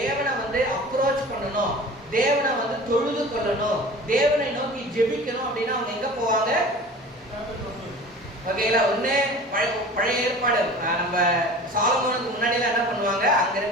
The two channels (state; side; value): normal; both; correlation 0.40